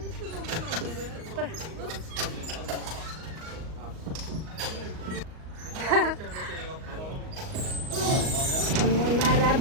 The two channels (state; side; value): late; left; 38 ms